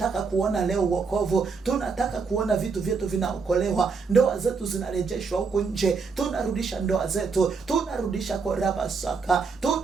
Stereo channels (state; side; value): quieter; left; 5.0 dB